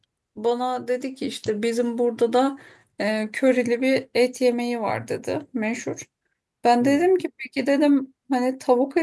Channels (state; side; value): identical; both; correlation 1.00